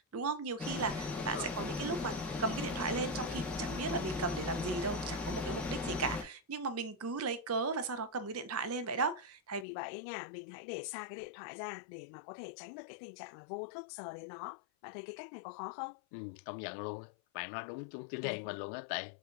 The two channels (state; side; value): drops out; right; at 9.7 s